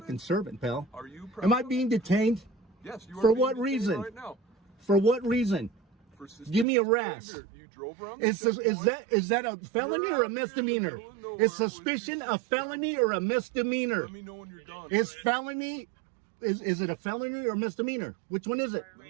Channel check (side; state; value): left; drops out; at 6.7 s